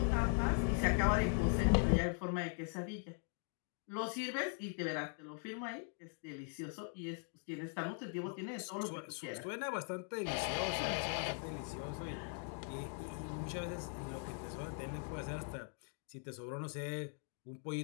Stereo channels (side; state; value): right; silent; 51 dB below the other